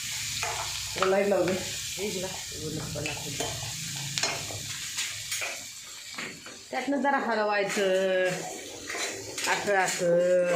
लाईट लावू दे. त्यातनं जरा हलवायचं असं असं.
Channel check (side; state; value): both; identical; correlation 1.00